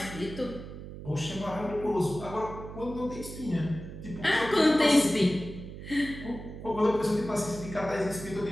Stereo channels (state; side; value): noise; right; hum, 11 dB below the sound